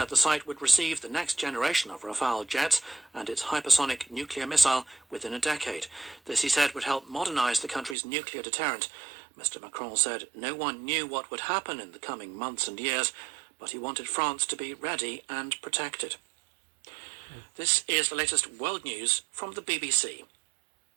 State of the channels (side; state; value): left; drops out; at 8.0 s